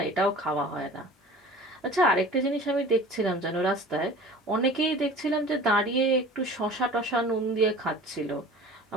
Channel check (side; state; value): both; normal; correlation 0.42